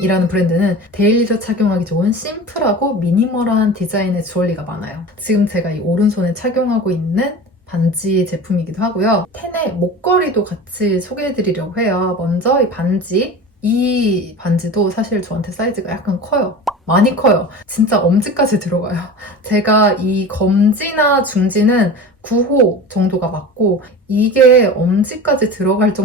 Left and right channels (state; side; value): normal; both; correlation 0.33